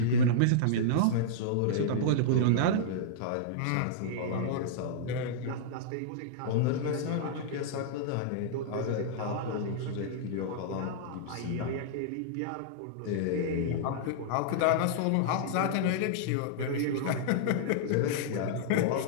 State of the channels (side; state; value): both; different; correlation -0.02